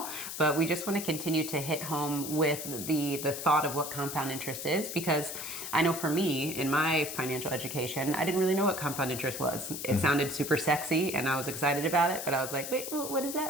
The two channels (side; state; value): left; noise; hiss, 7 dB below the sound